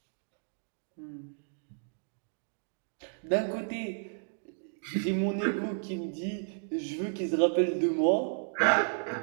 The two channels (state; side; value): silent; left; digital silence